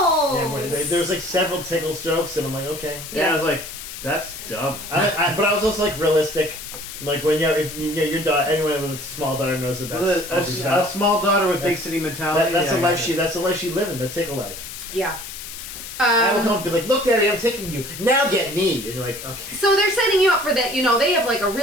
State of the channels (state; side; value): noise; left; hiss, 11 dB below the sound